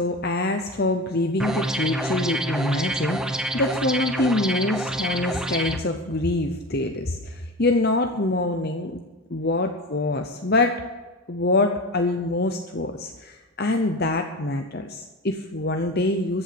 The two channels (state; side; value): normal; both; correlation 0.29